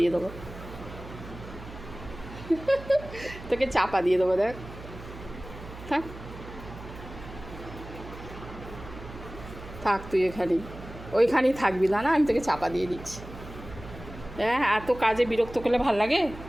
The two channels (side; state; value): right; noise; hum, 14 dB below the sound